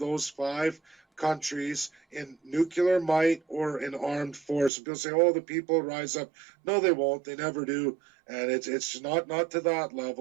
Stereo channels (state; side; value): drops out; left; at 4.7 s